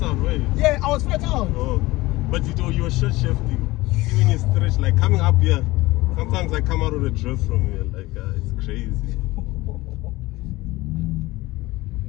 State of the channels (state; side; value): quieter; right; 19.7 dB